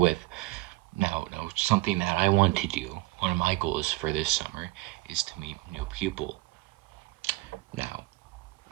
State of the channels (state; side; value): quieter; left; 21.0 dB